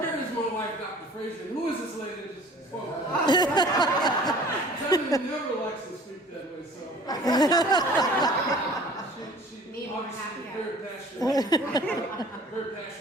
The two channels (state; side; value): normal; both; correlation 0.48